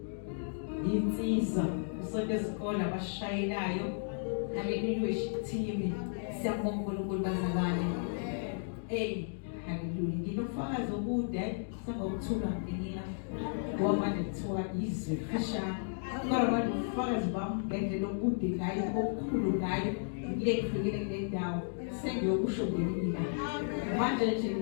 insizwa usonto esikole abashayelayo haleluya team siyabonga uNkulunkulu bazalwane haleluya nginofakazi okude sangokuthula nginika ngoba nethiwa izwe fishane kodwa ubufakazi bami ngendlela okude ngayo okukhulu ngayo ngike kufikele kule ndawo sengiyokusho ngenika manje nje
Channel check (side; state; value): right; silent; digital silence